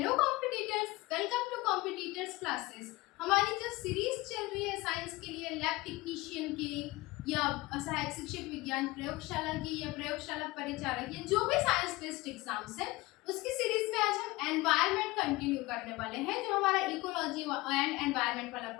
competitors, welcome to competitors classes. हमारी जो series चल रही है साइंस के लिए, लैब टेक्नीशियन की या सहायक शिक्षक विज्ञान प्रयोगशाला की या प्रयोगशाला परिचालक या जो भी साइंस बेस्ड एग्जाम्स है, उसकी सीरीज में आज हम एनवायरनमेंट कंटिन्यू करने वाले हैं। जो हमारा इकोलॉजी एंड एनवायरनमेंट वाला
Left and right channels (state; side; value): quieter; right; 21.1 dB